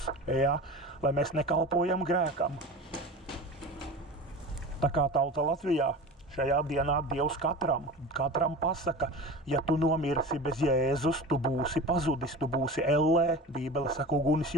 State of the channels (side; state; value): both; normal; correlation 0.33